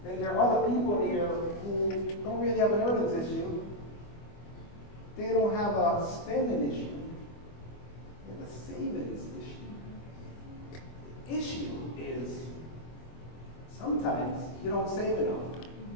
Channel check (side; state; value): right; late; 25 ms